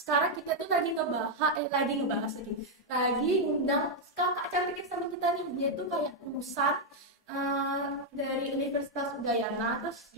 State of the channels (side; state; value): both; normal; correlation 0.00